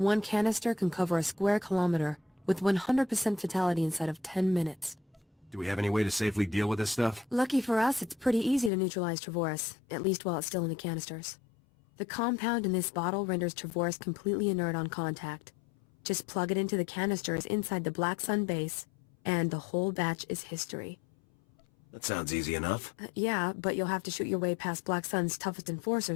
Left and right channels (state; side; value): drops out; right; at 8.7 s